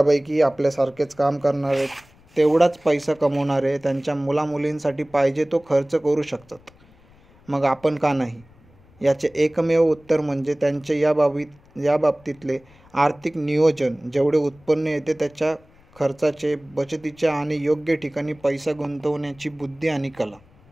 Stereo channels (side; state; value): left; noise; rumble, 28 dB below the sound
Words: आपल्यासारखेच काम करणारे, तेवढाच पैसा कमवणारे त्यांच्या मुलामुलींसाठी पाहिजे तो खर्च करू शकतात. मग आपण का नाही? याचे एकमेव उत्तर म्हणजे त्यांचे या बाबतीतले आर्थिक नियोजन, जेवढे उत्पन्न येते त्याच्या खर्चाचे, बचतीच्या आणि योग्य ठिकाणी पैसा गुंतवण्याची बुद्धी आणि कला.